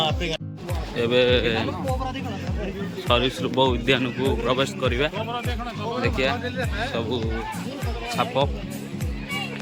ଏବେ ସରୀସୃପ ଉଦ୍ୟାନକୁ ପ୍ରବେଶ କରିବା। ଦେଖିବା ସବୁ ସାପ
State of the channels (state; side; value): identical; both; correlation 1.00